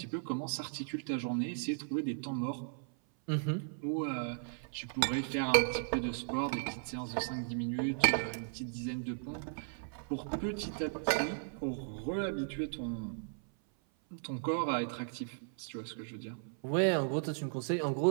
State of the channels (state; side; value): silent; left; 54 dB below the other